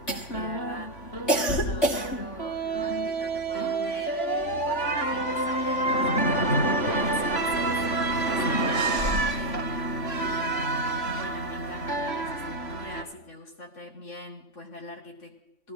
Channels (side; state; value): right; late; 3.5 ms